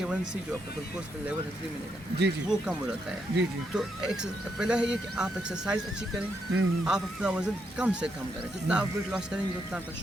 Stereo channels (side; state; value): both; normal; correlation 0.79